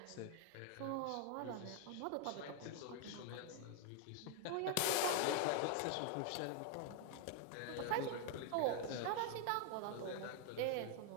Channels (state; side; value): different; both; correlation 0.00